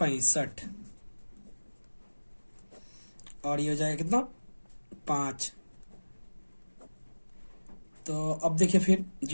और ये हो जाएगा कितना 5। तो अब देखिए फिर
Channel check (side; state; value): both; inverted; correlation -1.00